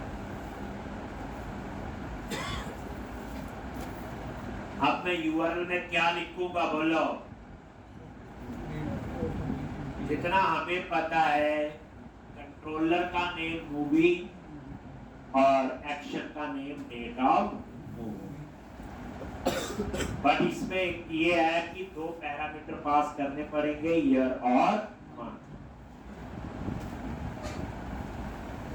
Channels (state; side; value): identical; both; correlation 1.00